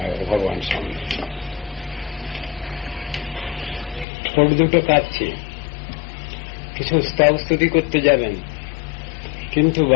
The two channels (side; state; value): right; drops out; at 4.0 s